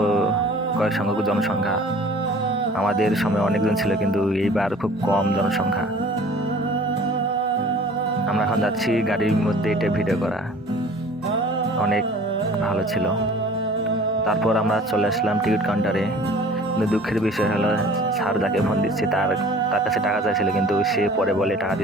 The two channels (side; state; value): both; normal; correlation 0.48